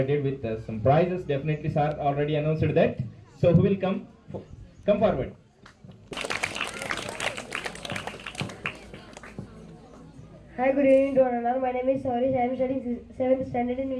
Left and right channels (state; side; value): identical; both; correlation 1.00